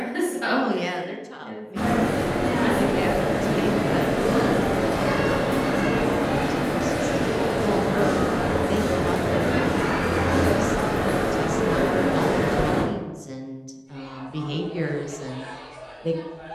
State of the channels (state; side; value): identical; both; correlation 1.00